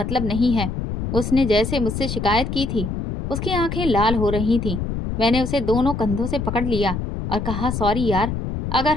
नहीं है। उसने जैसे मुझसे शिकायत की थी। उसकी आंखें लाल हो रही थीं। मैंने उसे दोनों कंधों से पकड़ लिया और कहा, सॉरी यार, अगर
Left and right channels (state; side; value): noise; left; rumble, 4 dB below the sound